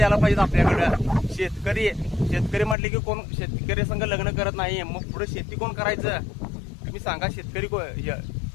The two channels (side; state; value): right; drops out; at 2.8 s